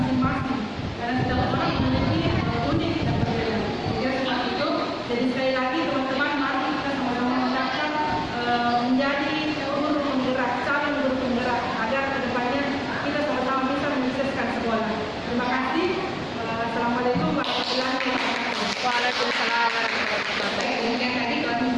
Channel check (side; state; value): both; identical; correlation 1.00